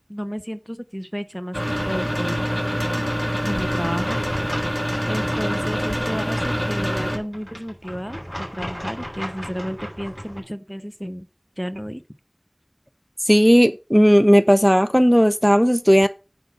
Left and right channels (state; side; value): identical; both; correlation 1.00